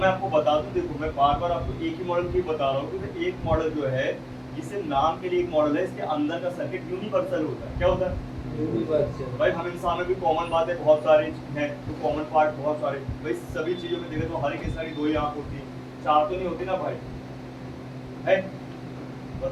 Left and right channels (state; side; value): identical; both; correlation 1.00